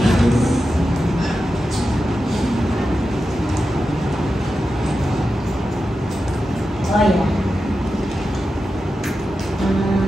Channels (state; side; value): normal; both; correlation 0.91